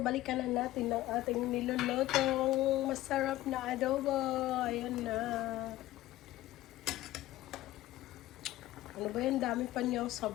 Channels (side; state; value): right; quieter; 15.9 dB